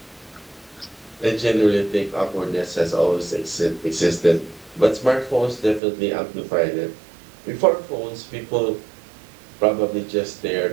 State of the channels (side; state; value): left; drops out; at 5.8 s